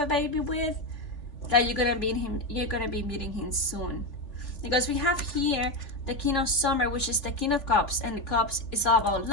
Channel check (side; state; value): right; late; 3.6 ms